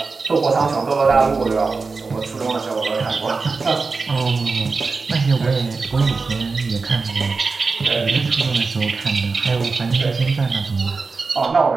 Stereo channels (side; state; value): left; quieter; 4.3 dB